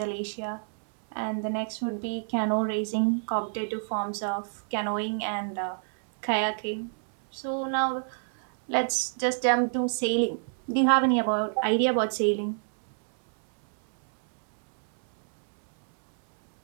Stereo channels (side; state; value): left; silent; 60 dB below the other